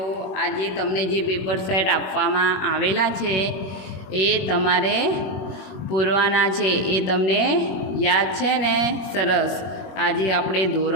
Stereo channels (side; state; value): right; late; 21 ms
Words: આજે તમને જે પેપર સેટ આપવામાં આવેલા છે એ તમારે પૂરવાના છે. એ તમને યાદ છે ને? સરસ. આજે આપણે